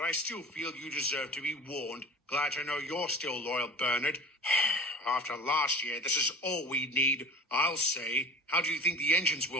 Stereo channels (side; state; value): both; normal; correlation 0.39